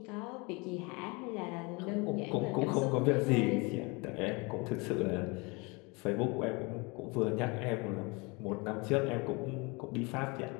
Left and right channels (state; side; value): quieter; right; 28.1 dB